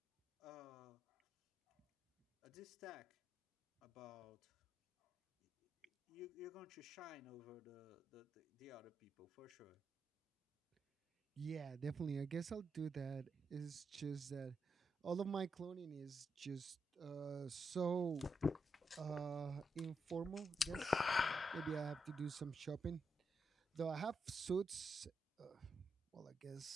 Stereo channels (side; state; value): both; normal; correlation 0.83